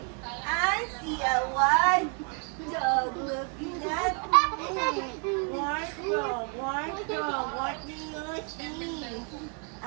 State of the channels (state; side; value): quieter; left; 37.7 dB